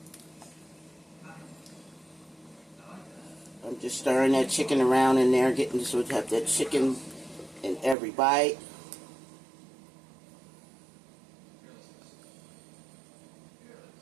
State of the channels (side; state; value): left; drops out; at 8.0 s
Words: I'm just stirring that chicken around in there, getting so we have that chicken in every bite.